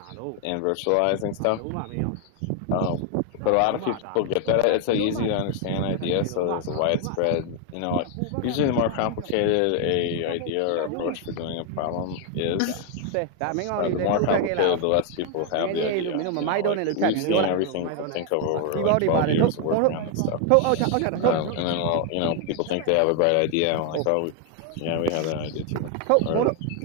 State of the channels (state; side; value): different; both; correlation 0.01